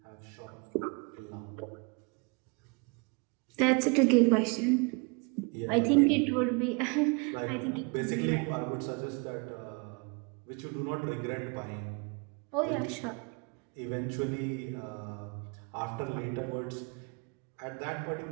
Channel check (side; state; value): left; quieter; 32.7 dB